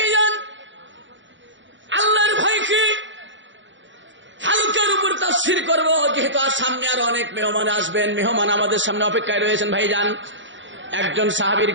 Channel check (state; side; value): late; left; 0.54 ms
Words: আল্লাহর ভয় কি হালকার উপর তাফসীর করব, যেহেতু আর সামনে আরো অনেক মেহমান আসবেন, মেহমান আমাদের সামনে অপেক্ষায় রয়েছেন। ভাইজান একজন সাহাবীর